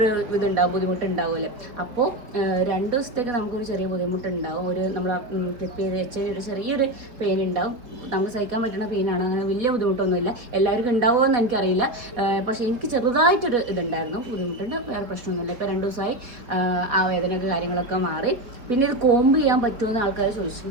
ബുദ്ധിമുട്ടുണ്ടാവുമല്ലേ. അപ്പോൾ 2 ദിവസത്തേക്ക് നമുക്കൊരു ചെറിയ ബുദ്ധിമുട്ടുണ്ടാവും. നമ്മൾ ക്ലിപ്പ് ചെയ്ത് വെച്ച് കഴിഞ്ഞാൽ ഒരു ചെറിയൊരു പെയിൻ ഉണ്ടാവും. നമുക്ക് സഹിക്കാൻ പറ്റുന്ന പെയിനാണ്, അങ്ങനെ വലിയ ബുദ്ധിമുട്ടൊന്നുമില്ല. എല്ലാവർക്കും ഉണ്ടാവുമോ എന്ന് എനിക്കറിയില്ല. പക്ഷേ എനിക്ക് ചെറുതായിട്ടൊരു ഇതുണ്ടായിരുന്നു, ബുദ്ധിമുട്ടുണ്ട്, വേറെ പ്രശ്നമൊന്നുമില്ല. ഇപ്പോൾ 2 ദിവസമായി ആ വേദനയൊക്കെ കാര്യങ്ങളൊക്കെ മാറി. പിന്നെ ഇത് കോമ്പ് ചെയ്യാൻ പറ്റുമെന്ന് ആൾക്കാർ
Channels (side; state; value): left; late; 4.1 ms